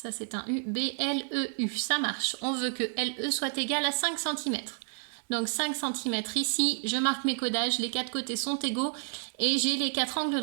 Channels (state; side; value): silent; left; 58 dB below the other